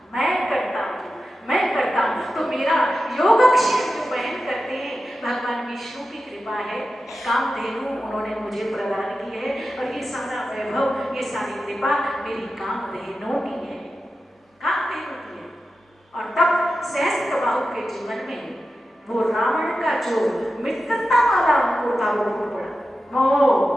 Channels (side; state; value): both; normal; correlation 0.92